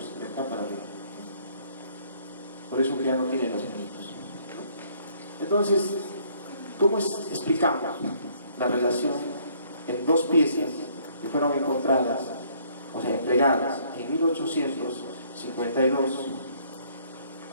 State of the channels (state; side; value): inverted; both; correlation -0.63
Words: de acá para arriba. Por eso que ya no tiene los manitos. Entonces, ¿cómo explicamos la relación en dos piezas que fueron encontradas, o sea, entregadas en 1852,